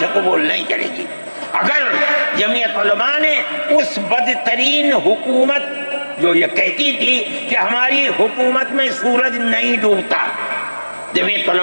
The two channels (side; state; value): both; inverted; correlation -1.00